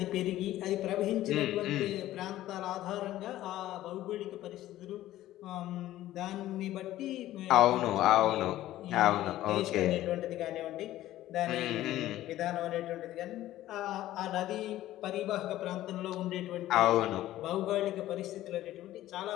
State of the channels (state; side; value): quieter; right; 14.5 dB